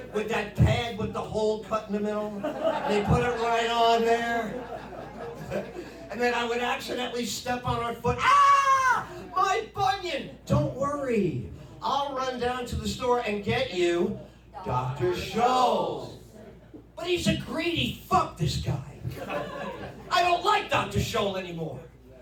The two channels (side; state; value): both; identical; correlation 1.00